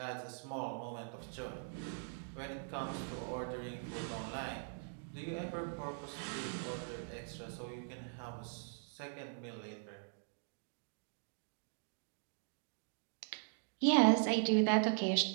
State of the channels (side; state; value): left; silent; digital silence